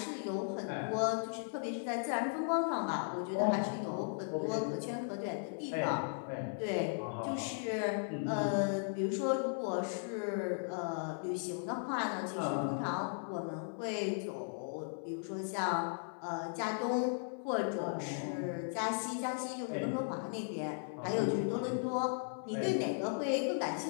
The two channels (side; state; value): right; silent; 53 dB below the other